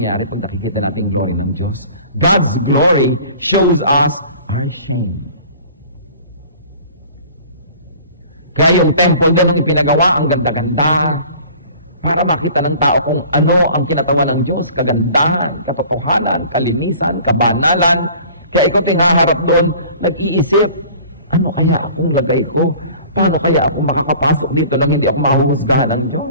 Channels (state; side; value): inverted; both; correlation -0.47